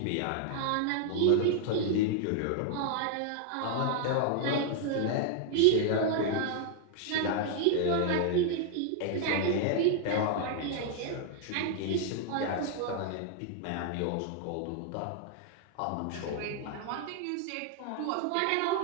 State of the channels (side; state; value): both; different; correlation 0.00